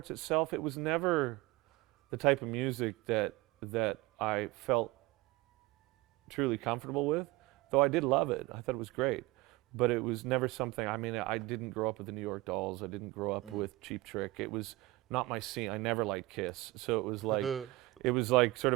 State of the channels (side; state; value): left; quieter; 20.2 dB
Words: itself, it was never the type of music that I felt truly comfortable with, though I did love it. I thought it was great. But it was never something, I mean, I didn't grow up with the New York Dolls. I didn't grow up with Cheap Trick. It was not my scene. I never liked Kiss. So it was like, it was like sort